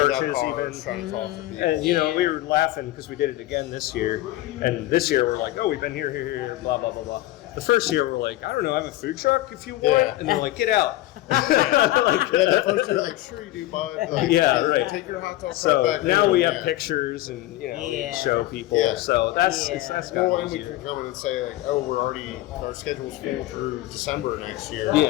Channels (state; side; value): quieter; right; 16.4 dB